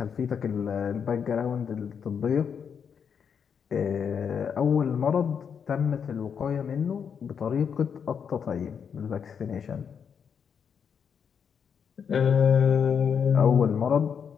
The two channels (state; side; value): quieter; right; 7.1 dB